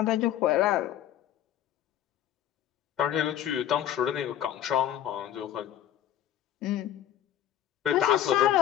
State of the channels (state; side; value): quieter; right; 11.3 dB